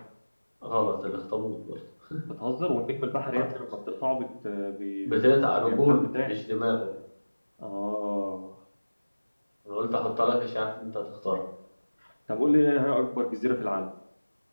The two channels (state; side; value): inverted; both; correlation -1.00